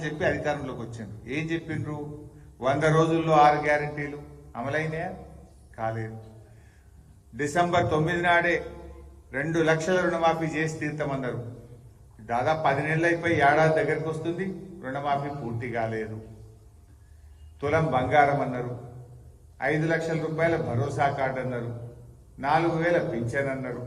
చెప్పి అధికారంలోకి వచ్చిండ్రు. ఏం చెప్పిండ్రు? 100 రోజుల్లో 6 గ్యారంటీలు అమలైనాయా? కాలేదు. డిసెంబర్ 9 నాడే 2 లక్షల రుణమాఫీ చేసి తీర్థమన్నారు. దాదాపు 10 నెలలు అయిపోయి ఏడాది దగ్గరకు వస్తుంది, రుణమాఫీ పూర్తి కాలేదు. తులం బంగారం అన్నారు, 5 లక్షల రూపాయల భరోసా కార్డు అన్నారు, 4,000 పింఛన్ అన్నారు.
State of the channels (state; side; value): identical; both; correlation 1.00